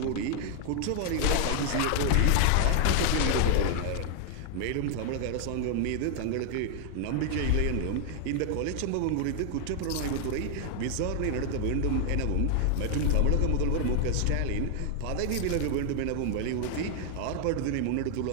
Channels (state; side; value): different; both; correlation 0.00